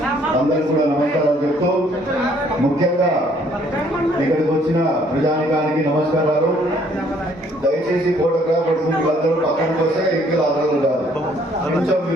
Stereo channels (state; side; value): normal; both; correlation 0.63